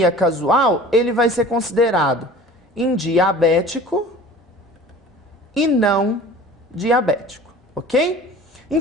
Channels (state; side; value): normal; both; correlation 0.43